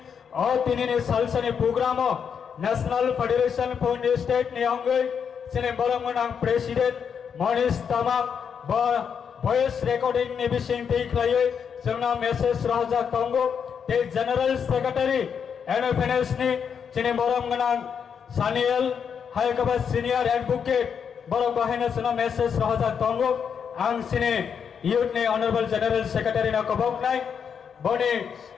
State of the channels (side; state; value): right; quieter; 7.1 dB